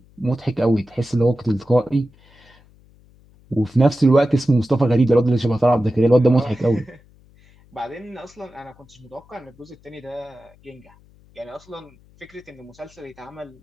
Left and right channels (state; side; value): noise; left; hum, 28 dB below the sound